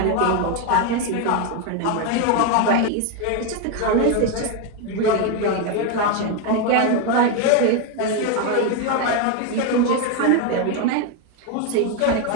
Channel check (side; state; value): both; different; correlation 0.02